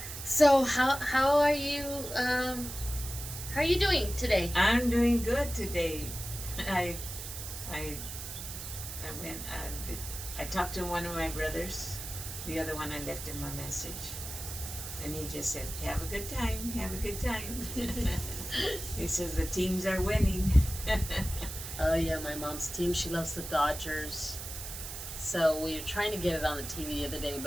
So how are you? How are you doing today? I'm doing good today. I I went. I talked to one of my brothers. The other one I left him a message, and he just said, "Have a good time. Have a good time." He says the teams are winning. Oh yeah, my mom's team. She loves the Dodgers. So we were trying to get it on the TV the other day,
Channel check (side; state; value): right; noise; hiss, 8 dB below the sound